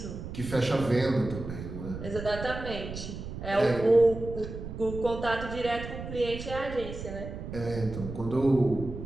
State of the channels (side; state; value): right; noise; rumble, 9 dB below the sound